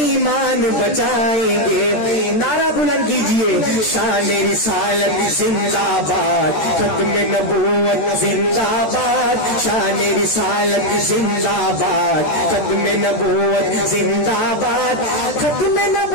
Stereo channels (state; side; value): late; right; 13 ms